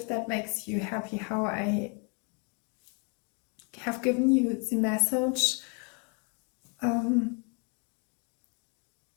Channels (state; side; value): quieter; right; 36.2 dB